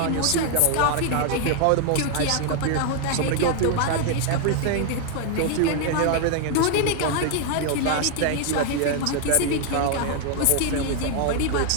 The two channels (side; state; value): both; different; correlation 0.00